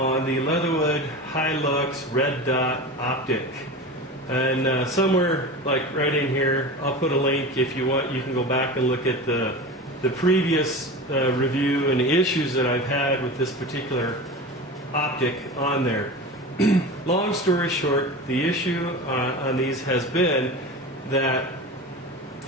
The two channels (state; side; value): normal; both; correlation 0.29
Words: the Leatherwood Hi-Lux red dot optic. And somewhere like right in here, I'll put a link. If you want, you can go back and look at the previous review and the issues that I've had with this particular optic on there. Long story short, the issue on these has been that